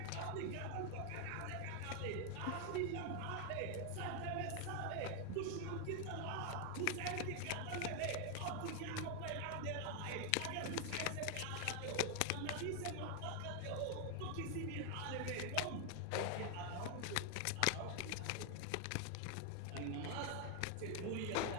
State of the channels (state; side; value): different; both; correlation 0.00